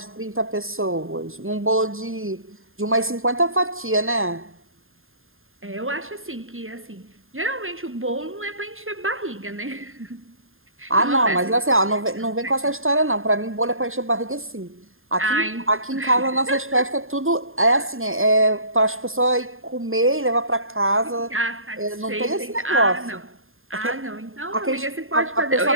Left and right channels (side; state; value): left; late; 0.60 ms